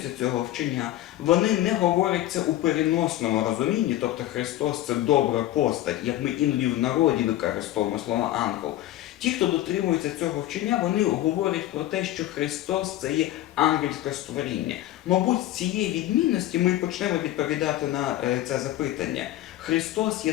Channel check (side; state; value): right; quieter; 14.3 dB